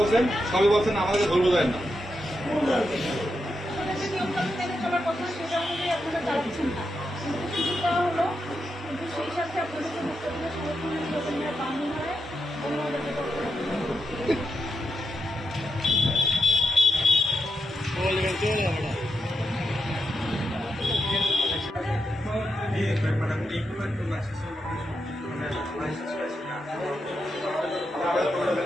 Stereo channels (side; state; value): both; normal; correlation 0.85